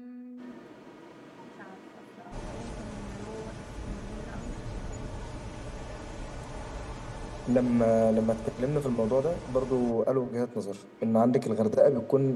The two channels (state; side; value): identical; both; correlation 1.00